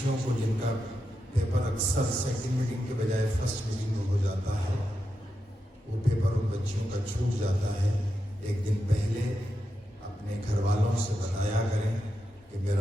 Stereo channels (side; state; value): both; normal; correlation 0.87